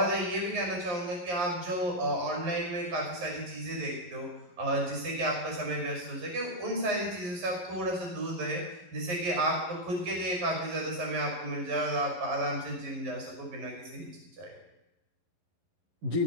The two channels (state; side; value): late; left; 11 ms